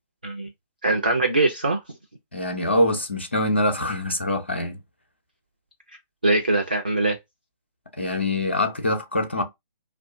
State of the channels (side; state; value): both; inverted; correlation -0.59